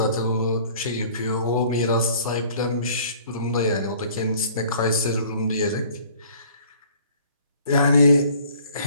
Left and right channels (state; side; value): inverted; both; correlation -0.54